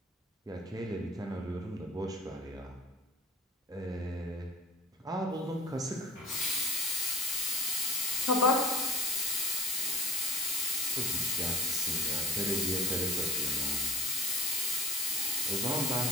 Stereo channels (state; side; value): normal; both; correlation 0.34